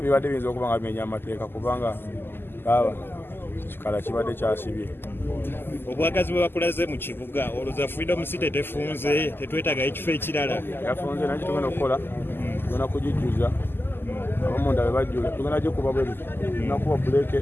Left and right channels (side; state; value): right; late; 0.10 ms